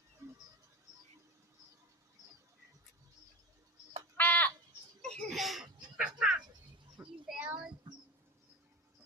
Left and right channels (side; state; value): both; normal; correlation 0.24